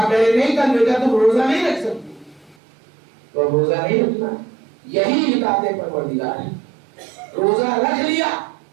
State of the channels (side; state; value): left; drops out; at 2.6 s